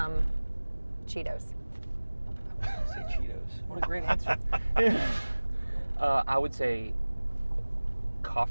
Cheetos. I was going to say Cheetos. What a great answer. I would say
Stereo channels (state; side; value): inverted; both; correlation -1.00